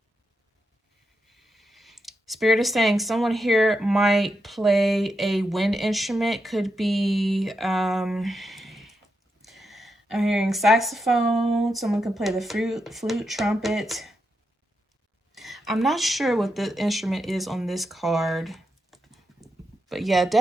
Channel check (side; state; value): both; normal; correlation 0.85